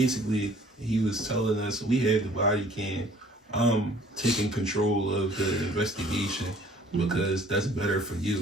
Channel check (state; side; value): normal; both; correlation 0.54